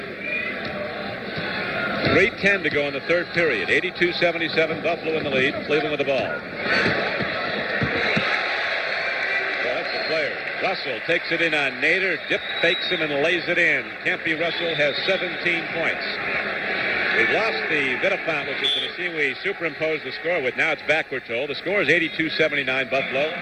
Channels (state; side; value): identical; both; correlation 1.00